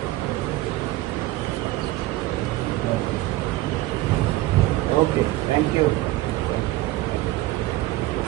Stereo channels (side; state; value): left; quieter; 17.3 dB